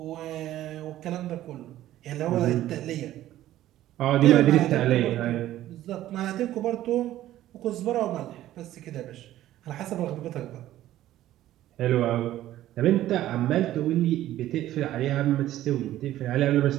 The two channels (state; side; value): quieter; left; 13.8 dB